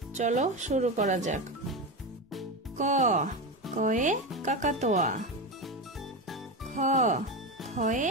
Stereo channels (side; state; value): both; normal; correlation 0.18